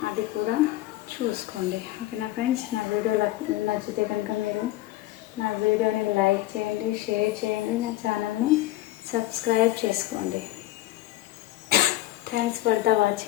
అది కూడా చూసుకోండి. ఓకేనా ఫ్రెండ్స్, నా వీడియో నచ్చితే కనుక మీరు నా వీడియోని లైక్ చేయండి, షేర్ చేయండి, నా ఛానల్ని సబ్స్క్రైబ్ చేసుకోండి. Thanks for the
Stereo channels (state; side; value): quieter; right; 15.9 dB